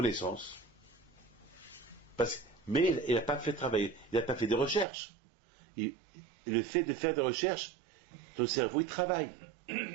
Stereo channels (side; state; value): left; drops out; at 4.9 s